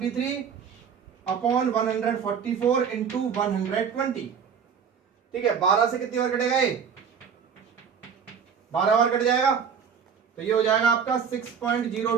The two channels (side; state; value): left; quieter; 7.0 dB